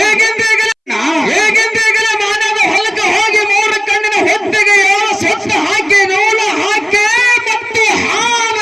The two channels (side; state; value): both; identical; correlation 1.00